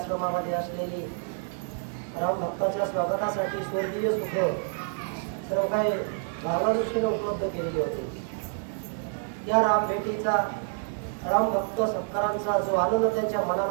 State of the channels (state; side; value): silent; left; 59 dB below the other